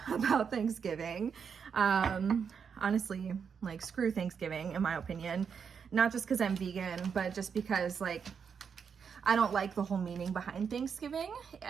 about Thanksgiving. Honestly, like screw Thanksgiving in my opinion. Not just because I'm vegan, but just because like, I don't like the whole meaning behind Thanksgiving.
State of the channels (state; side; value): quieter; left; 6.6 dB